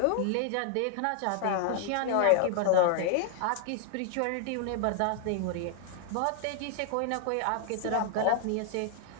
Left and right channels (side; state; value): both; different; correlation 0.00